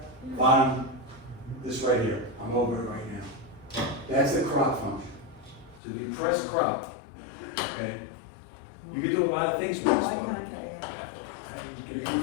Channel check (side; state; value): right; drops out; at 5.8 s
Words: Bottom, this right here, I'm over it right now. That's the crop function. So if you press crop, okay, you can do a lot of things with this one. You can